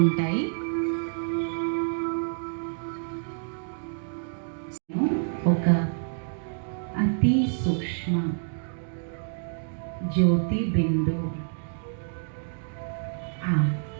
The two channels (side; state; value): left; silent; digital silence